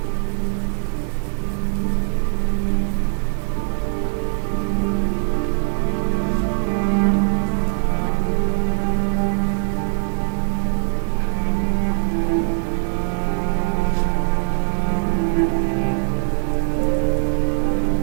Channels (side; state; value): left; silent; digital silence